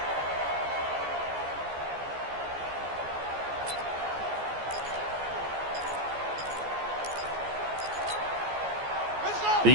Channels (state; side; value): late; left; 14 ms